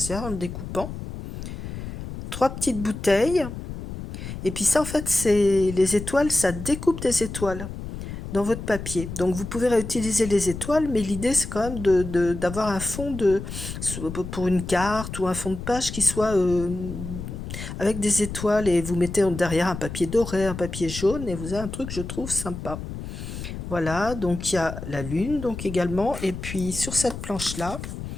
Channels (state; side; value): noise; left; rumble, 8 dB below the sound